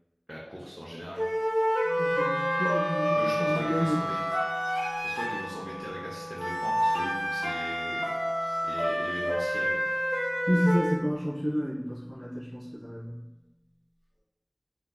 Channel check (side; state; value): both; identical; correlation 1.00